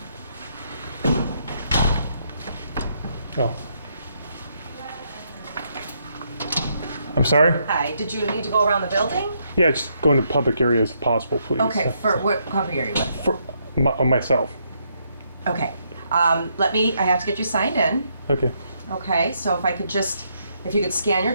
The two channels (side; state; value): both; inverted; correlation -0.75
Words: Oh. I'm sorry? Hi, did you need to go around the building? Yeah, just go into public areas if possible, please. Okay, for what public area? For myself. Okay, I have to get you signed in. Okay. Okay, so if you could scan your